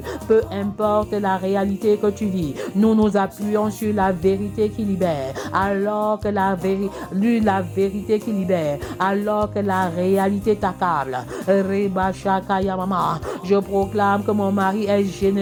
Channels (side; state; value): both; identical; correlation 1.00